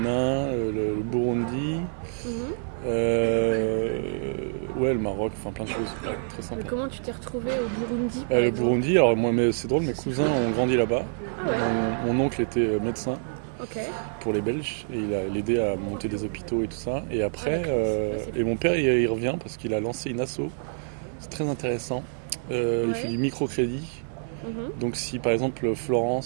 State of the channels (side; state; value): left; silent; digital silence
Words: le Burundi, Mhm. le Maroc, enfin plein de choses. Très Mais sympa. comment tu t'es retrouvé au Burundi, par Le exemple? Burundi, alors moi, mais c'est drôle, mes cousins ont grandi là-bas. Ah ouais, Mon oncle était médecin ok. pour les Belges et il a aidé à monter des hôpitaux et tout ça. Et après, d'accord. Ouais, c'est et mon père il revient parce qu'il a lancé une asso. C'est très intéressant. Il Ouais. fait du microcrédit. Mhm. Donc si par exemple